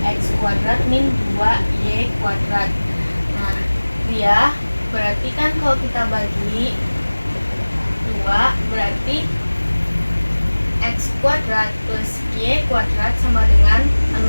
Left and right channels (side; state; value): both; inverted; correlation -1.00